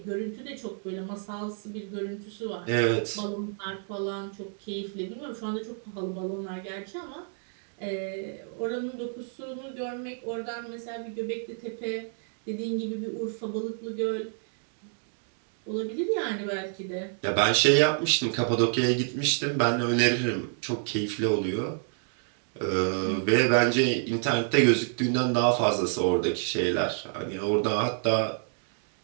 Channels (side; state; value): left; silent; 59 dB below the other